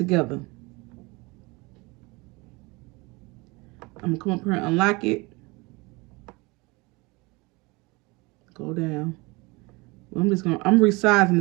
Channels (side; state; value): left; quieter; 25.4 dB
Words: I'm going to come up here and unlock it. Go down. Well, I'm resizing